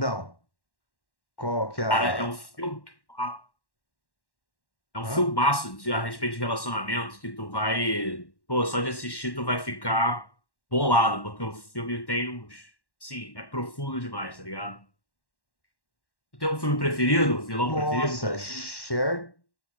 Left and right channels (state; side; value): late; right; 1.1 ms